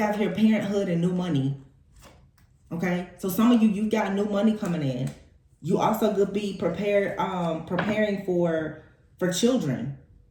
here parenthood and new money. Okay, so some of you got new money coming in. You also could be preparing for children,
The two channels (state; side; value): identical; both; correlation 1.00